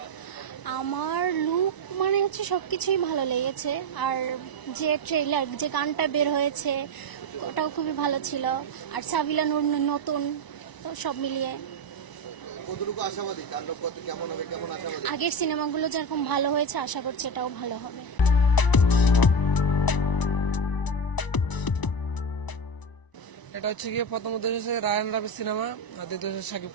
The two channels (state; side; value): late; right; 1.0 ms